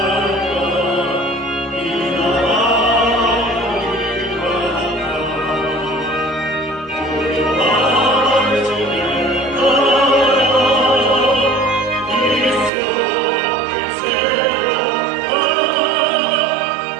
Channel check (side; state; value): left; drops out; at 12.7 s